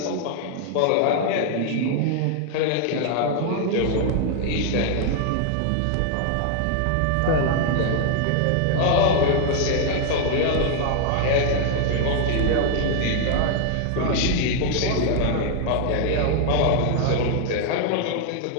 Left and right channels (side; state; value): both; different; correlation 0.00